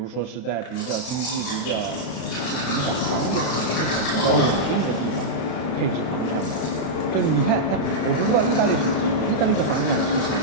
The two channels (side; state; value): right; late; 32 ms